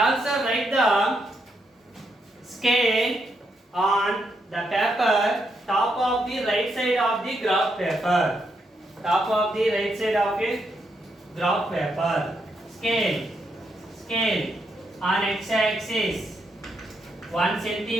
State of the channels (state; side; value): normal; both; correlation 0.80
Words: write the scale on the paper, top of the right side of the graph paper. Top of the right side of it graph paper. Scale on x-axis 1